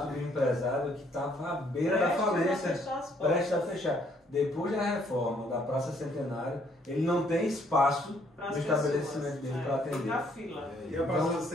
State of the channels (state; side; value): normal; both; correlation 0.66